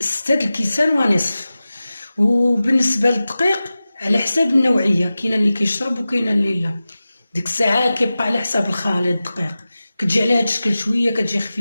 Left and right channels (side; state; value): both; inverted; correlation -0.95